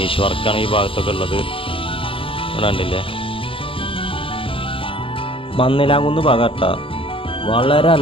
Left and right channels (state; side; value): late; right; 0.26 ms